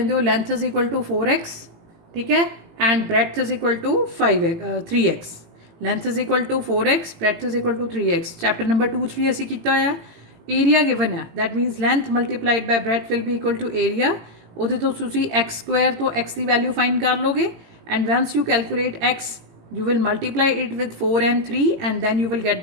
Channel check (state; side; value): late; left; 18 ms